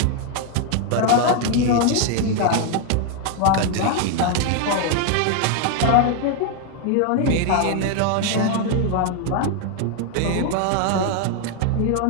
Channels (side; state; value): both; different; correlation 0.01